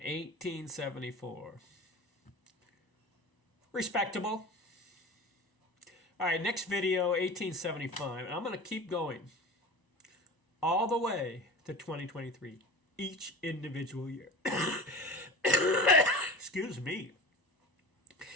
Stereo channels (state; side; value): late; right; 1.0 ms